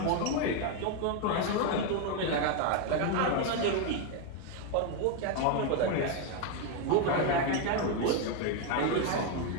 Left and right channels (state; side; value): different; both; correlation 0.01